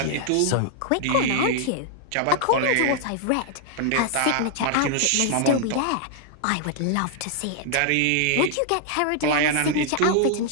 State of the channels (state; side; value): different; both; correlation 0.00